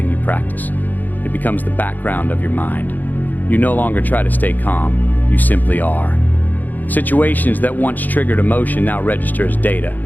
you practice. It becomes the background of your mind. You no longer try to stay calm, you simply are. Situations that once triggered emotion now register as data.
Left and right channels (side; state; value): right; late; 0.085 ms